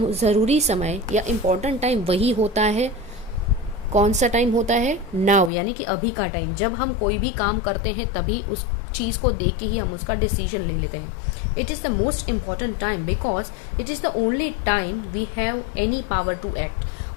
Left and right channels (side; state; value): right; drops out; at 5.5 s